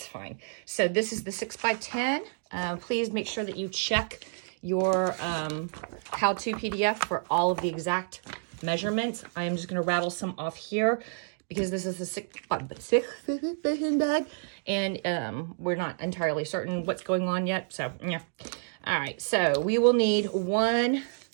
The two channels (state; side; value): silent; left; digital silence